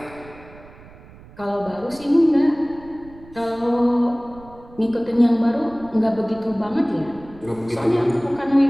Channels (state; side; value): noise; right; rumble, 21 dB below the sound